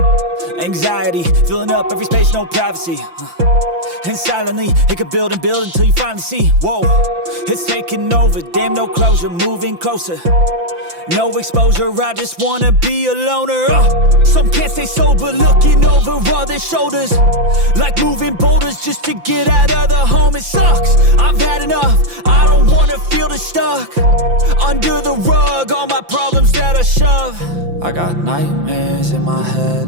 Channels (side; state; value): left; late; 5.9 ms